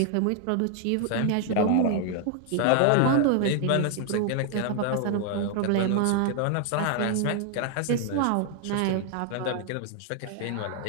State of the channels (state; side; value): different; both; correlation 0.00